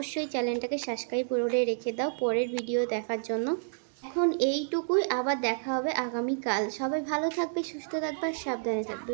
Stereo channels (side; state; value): left; silent; digital silence